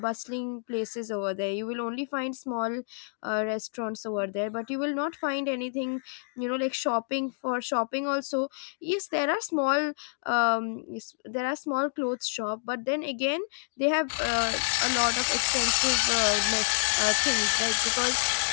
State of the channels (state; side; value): silent; right; digital silence